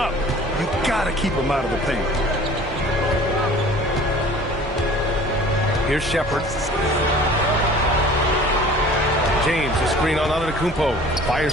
You gotta keep him out of the paint. Here's Shepherd. James, a screen on Antetokounmpo. Fires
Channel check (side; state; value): both; normal; correlation 0.46